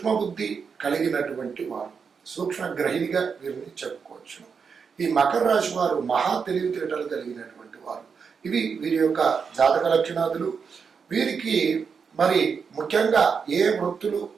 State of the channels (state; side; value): quieter; left; 5.9 dB